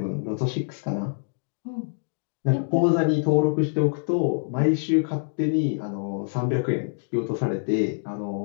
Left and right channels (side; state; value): right; silent; digital silence